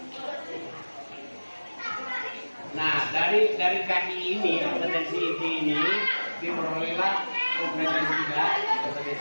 Nah, dari kaki ini, kompetensi inti ini diperolehlah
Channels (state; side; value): inverted; both; correlation -1.00